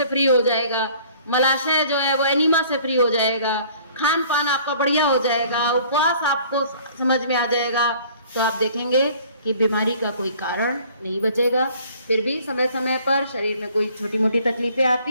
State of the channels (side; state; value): both; inverted; correlation -0.54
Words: फ्री हो जाएगा, मलाशय जो है वो एनीमा से फ्री हो जाएगा, खान पान आपका बढ़िया हो जाएगा, उपवास आपको समझ में आ जाएगा। तो आप देखेंगे कि बीमारी का कोई कारण नहीं बचेगा। फिर भी समय समय पर शरीर में कोई छोटी मोटी तकलीफें